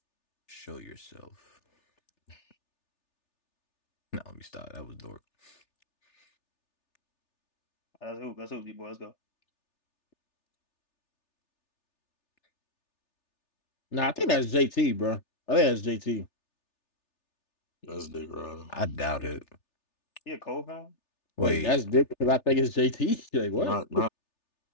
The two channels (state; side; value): late; right; 3.4 ms